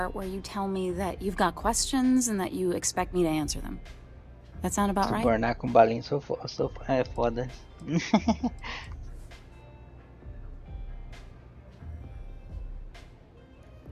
where you tell me that you've got questions and that you expect me to answer them. That sound about right? Subornar com balinhas é foda.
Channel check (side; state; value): both; identical; correlation 1.00